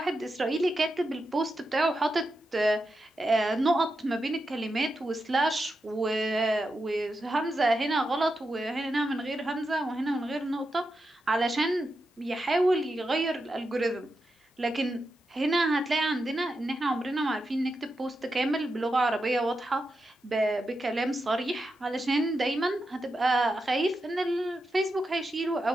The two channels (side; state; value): both; normal; correlation 0.88